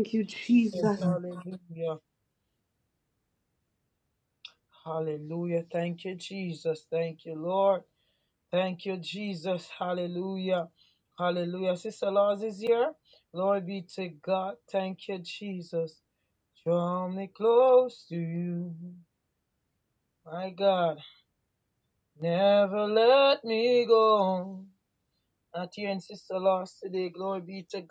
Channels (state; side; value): identical; both; correlation 1.00